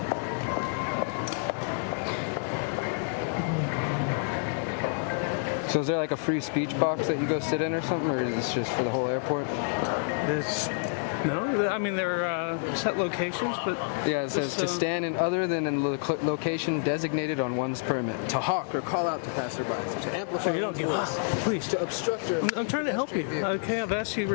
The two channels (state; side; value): silent; right; 59 dB below the other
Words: So is there like a free speech box that you go sit in or something, or is this just for the whole airport? No, I mean there are set locations, but Yeah, it says to stand in other than in location designated on one's permit, to hawk or call out to passerbys, to amplify you don't one's get voice, please. to obstruct or I'm trying to help you. pedestrian vehicles, Okay, I've asked you